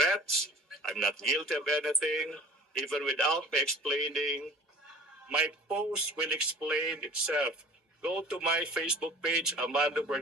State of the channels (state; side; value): normal; both; correlation 0.46